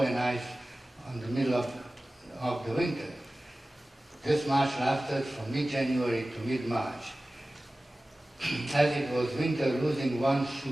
ice on the middle of the winter. This march lasted from mid-January to mid-March. As it was winter, losing one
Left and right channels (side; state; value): both; normal; correlation 0.97